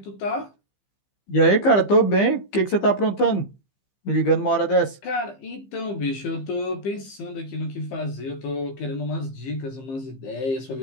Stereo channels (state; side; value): late; right; 15 ms